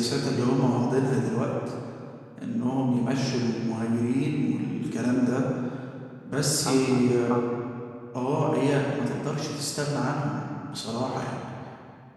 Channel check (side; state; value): both; identical; correlation 1.00